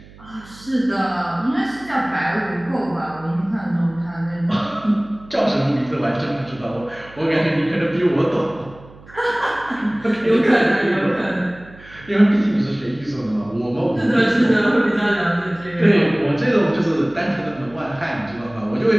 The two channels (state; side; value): noise; right; hum, 22 dB below the sound